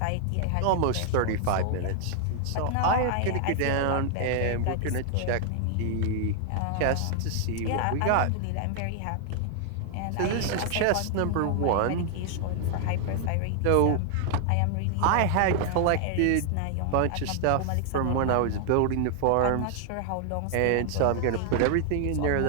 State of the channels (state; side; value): different; both; correlation 0.00